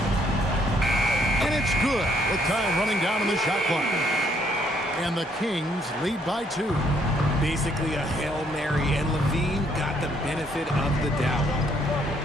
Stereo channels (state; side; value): normal; both; correlation 0.68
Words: And it's good with time running down on the shot clock. And the Kings lead by 2. Basically a Hail Mary, and Levine got the benefit of the doubt.